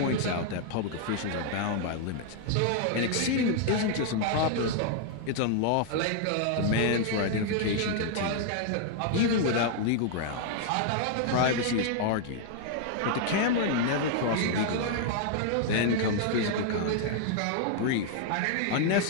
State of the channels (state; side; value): different; both; correlation 0.00